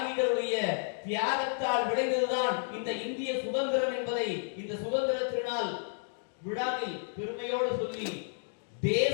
தியாகத்தால் விளைந்ததுதான் இந்த இந்திய சுதந்திரம் என்பதை இந்த சுதந்திர திருநாள் விழாவில் பெருமையோடு சொல்லி,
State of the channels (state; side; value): silent; right; digital silence